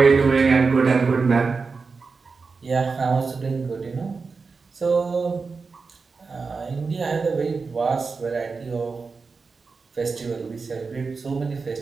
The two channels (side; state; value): left; quieter; 4.6 dB